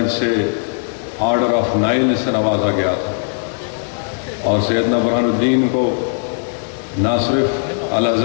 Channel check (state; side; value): silent; right; digital silence